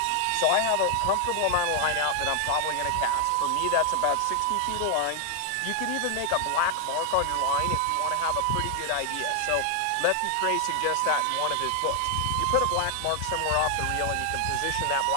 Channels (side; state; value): both; different; correlation 0.00